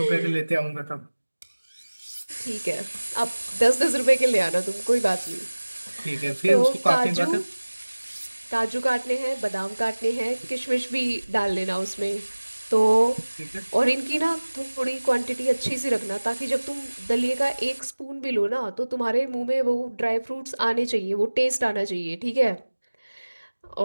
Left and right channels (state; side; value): inverted; both; correlation -1.00